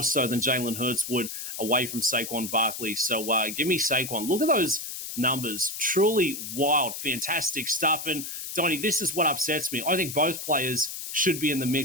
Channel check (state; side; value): noise; left; hiss, 7 dB below the sound